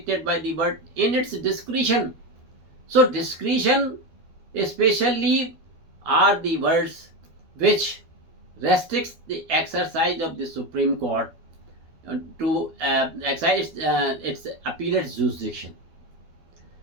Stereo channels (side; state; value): left; late; 12 ms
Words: by the word in its discretion. So discretion, special leave are the words which restricts the exercise of the Supreme Court to exercise its appellate jurisdiction.